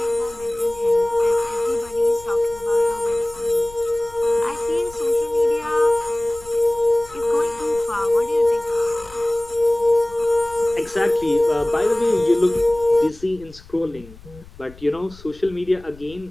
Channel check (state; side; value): noise; left; rumble, 21 dB below the sound